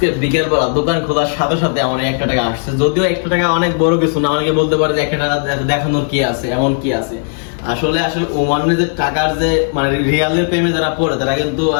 বিকেল বেলা দোকান খোলার সাথে সাথে আমার 1 টাকা আসছে। যদিও 1 টাকা অনেক বড় কিছু না, অনেকে বলতে পারে যে 1 টাকা দেখানোর কি আছে, এমন কি আছে। আসলে ওমানের যে টাকার যে মানে রিয়ালের প্রেমে যারা পড়ে তারা কিন্তু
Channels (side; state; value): right; silent; 68 dB below the other